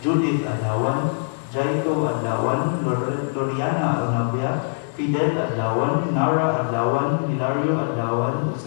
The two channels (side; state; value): right; silent; 55 dB below the other